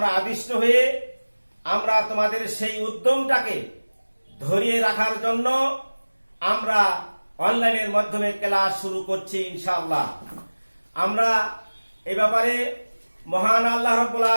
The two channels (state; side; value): inverted; both; correlation -1.00